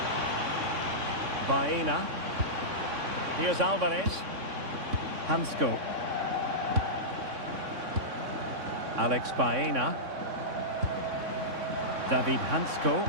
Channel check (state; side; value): late; left; 3.6 ms